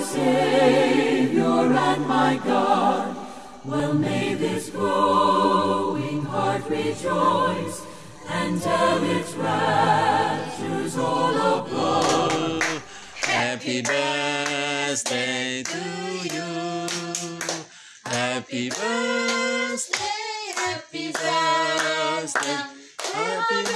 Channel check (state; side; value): identical; both; correlation 1.00